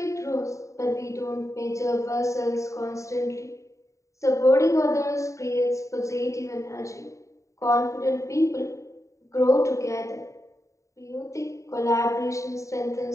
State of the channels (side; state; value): right; late; 0.15 ms